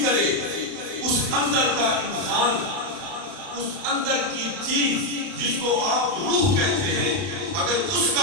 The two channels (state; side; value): late; left; 32 ms